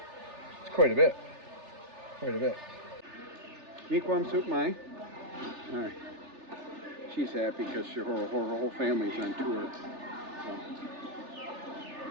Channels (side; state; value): left; late; 3.4 ms